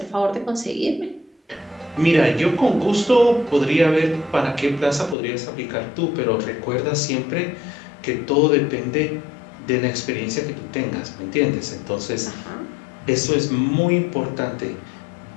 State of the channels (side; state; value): right; drops out; at 5.2 s